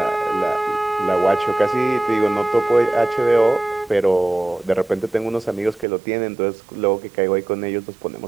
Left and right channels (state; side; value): drops out; left; at 5.9 s